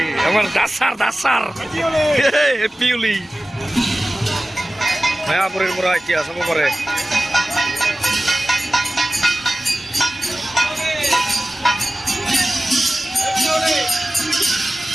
আমাৰ দাসাৰ হেপ্পী হোলী। মায়াপুৰীৰ পৰা এতিয়া চাব পাৰে।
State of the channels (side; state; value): both; normal; correlation 0.96